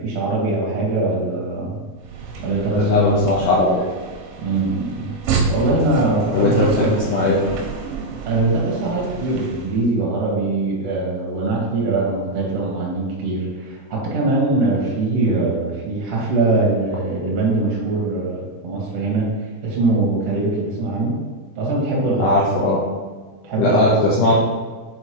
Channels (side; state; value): both; normal; correlation 0.01